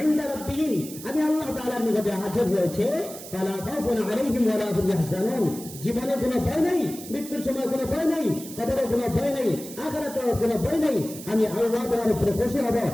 ইনদা রাব্বিহিম, আমি আল্লাহ তাআলার নিকটে আজর রয়েছে। ফালা খাউফুন আলাইহিম ওয়া লা হুম ইয়াহজানুন, জীবনে কোনো ভয় নেই, মৃত্যুর সময় কোনো ভয় নেই, কবরে কোনো ভয় নেই, আখিরাতে কোনো ভয় নেই। আমি আল্লাহ তোমার উপরে খুশি হব,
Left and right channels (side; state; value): right; noise; hiss, 13 dB below the sound